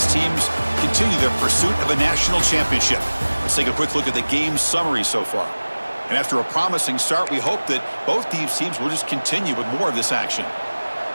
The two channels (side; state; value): both; inverted; correlation -1.00